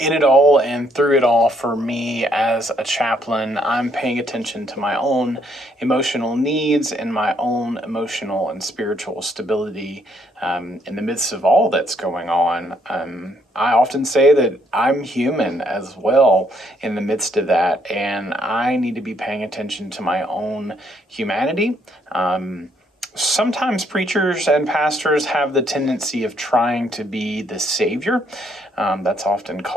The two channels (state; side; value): normal; both; correlation 0.70